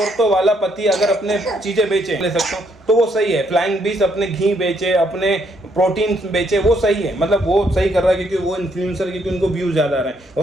वाला पति अगर अपने चीजें बेचे, ले सकता हूँ तो वो सही है। फ्लाइंग बीस अपने घी बेचे, अपने प्रोटीन बेचे, वो सही है। मतलब वो सही कर रहा है क्योंकि वो इन्फ्लुएंसर, क्योंकि उनको व्यूज ज्यादा आ रहे हैं।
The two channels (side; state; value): both; normal; correlation 0.72